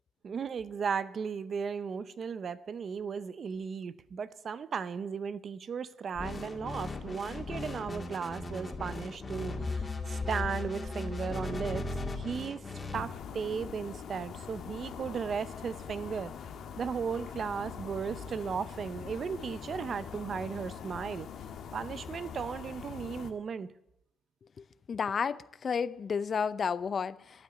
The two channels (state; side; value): normal; both; correlation 0.79